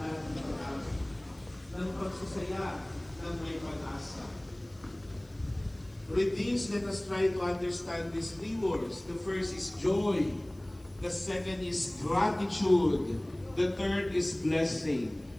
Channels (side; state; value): left; noise; hiss, 30 dB below the sound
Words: ng pagsasaya ng may pag-asa. With these, let us try to understand these three words. The first is joy. The second is gratitude. The third is blessing.